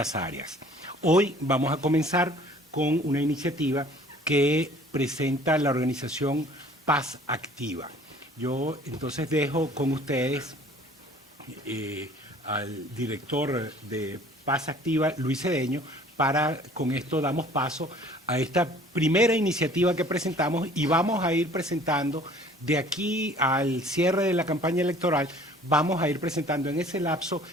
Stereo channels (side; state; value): both; normal; correlation 0.52